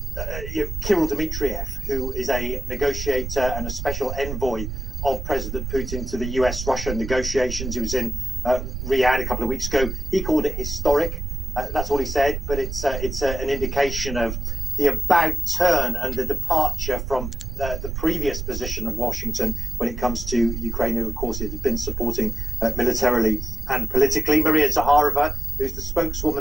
Dmitriev, who is a negotiator and a special envoy of President Putin to the US-Russia negotiations, he was in Riyadh a couple of weeks ago. He called it historic. That's all he said, but it's an indication of the about turn and the departure from the previous position of Washington when it comes to Ukraine, who, of course, it had been supporting militarily and politically. Maria Zakharova, who's the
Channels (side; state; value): right; noise; rumble, 5 dB below the sound